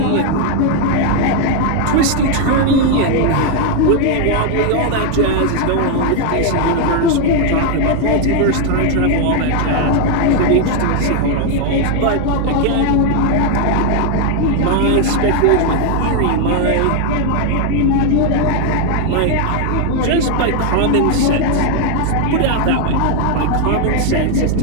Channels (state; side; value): different; both; correlation 0.01